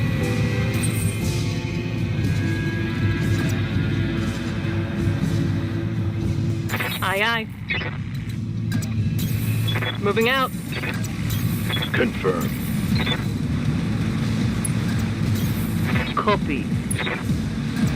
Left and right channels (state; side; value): identical; both; correlation 1.00